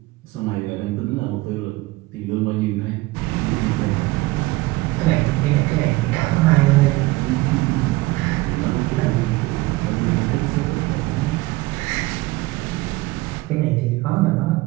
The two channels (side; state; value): left; quieter; 20.2 dB